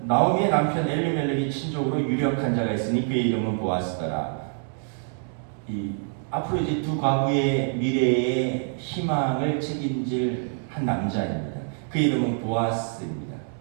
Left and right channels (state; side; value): silent; left; 61 dB below the other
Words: 나오미의 남편 엘리멜렉이 친족으로 유력한 자가 있으니 그의 이름은 보아스더라. 앞으로 이제 두 과부의 미래의 희망을 책임질 한 남자입니다. 그 이름은 보아스입니다.